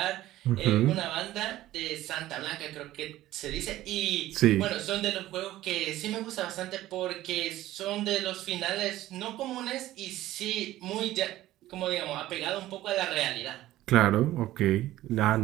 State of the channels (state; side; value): quieter; left; 15.1 dB